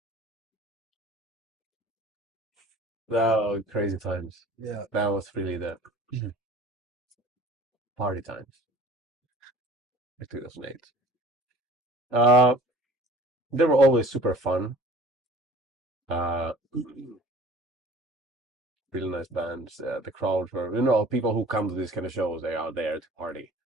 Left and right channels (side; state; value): both; normal; correlation 0.48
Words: Oh, crazy times. Yeah. That was really the party times. Like 2008. They were always super fun. Really nice bands. The crowds were, people who come to these kind of shows, they are there to party.